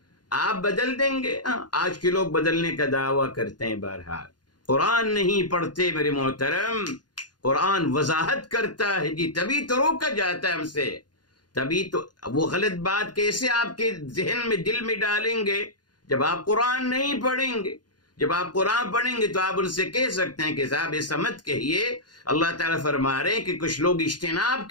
آپ بدل دیں گے؟ آج کے لوگ بدلنے کا دعویٰ کرتے ہیں، بہرحال قرآن نہیں پڑھتے میرے محترم، قرآن وضاحت کرتا ہے جی، تبھی تو روکا جاتا ہے ہم سے، تبھی تو وہ غلط بات کیسے آپ کے ذہن میں دل میں ڈالیں گے جب آپ قرآن نہیں پڑھیں گے۔ جب آپ قرآن پڑھیں گے تو آپ ان سے کہہ سکتے ہیں کہ صاحب ایسا مت کہیے، اللہ تعالیٰ فرما رہے ہیں کہ کچھ لوگ اجتناب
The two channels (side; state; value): right; late; 0.70 ms